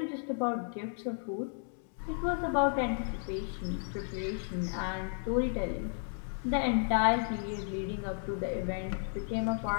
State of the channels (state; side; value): silent; right; 55 dB below the other